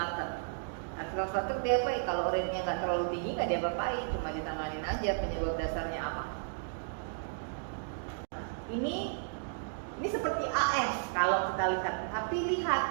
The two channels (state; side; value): silent; left; digital silence